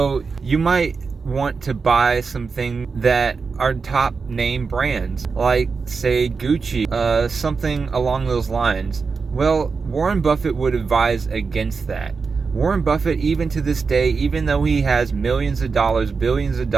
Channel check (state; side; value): quieter; left; 4.9 dB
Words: you might want to buy some things that are top name brands, like say Gucci, something along those lines. Well, Warren Buffett would advise against that. Warren Buffett, even to this day, even though he has millions of dollars, billions of